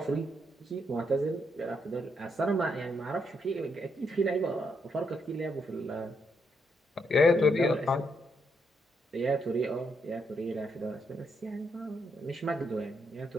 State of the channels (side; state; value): both; normal; correlation 0.78